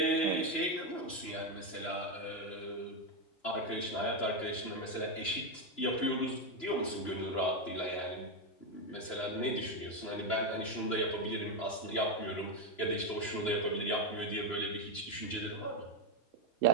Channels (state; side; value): late; right; 3.0 ms